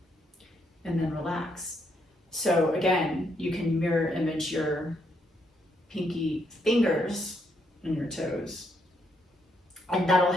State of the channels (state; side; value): normal; both; correlation 0.75